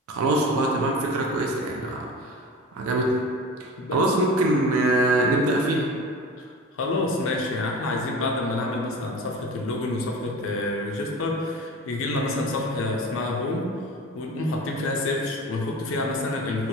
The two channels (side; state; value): both; normal; correlation 0.34